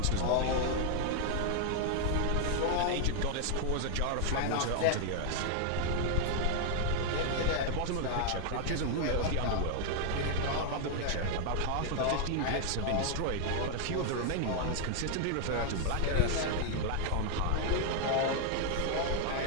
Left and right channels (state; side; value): different; both; correlation 0.00